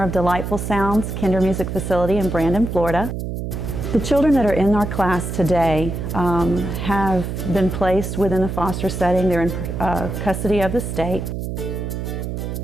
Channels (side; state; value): right; noise; hum, 5 dB below the sound